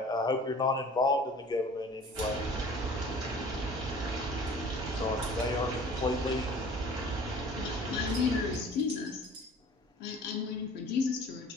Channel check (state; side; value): normal; both; correlation 0.47